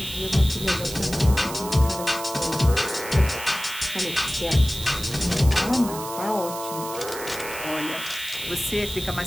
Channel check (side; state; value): right; noise; hiss, 11 dB below the sound